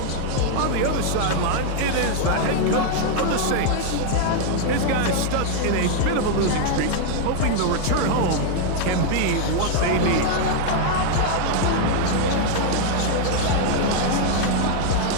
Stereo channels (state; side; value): different; both; correlation 0.00